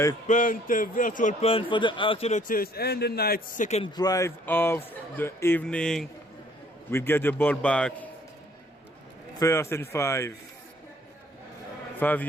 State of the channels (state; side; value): normal; both; correlation 0.61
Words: punt, a virtual punt for the Axolotls, and the night's second drive of the evening. We'll get the ball back. 1st and 5. 5